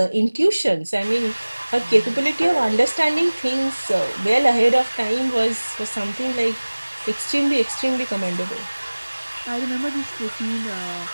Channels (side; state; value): both; inverted; correlation -1.00